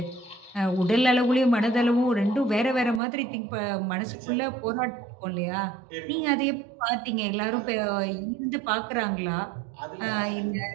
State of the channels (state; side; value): drops out; left; at 3.0 s